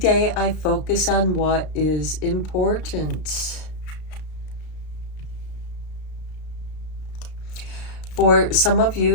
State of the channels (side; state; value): right; late; 33 ms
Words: I focus on what is important. For some of